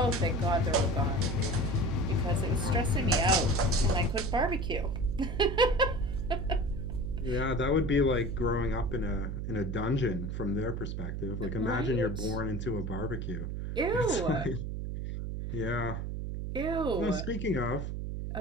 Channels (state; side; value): noise; right; hum, 4 dB below the sound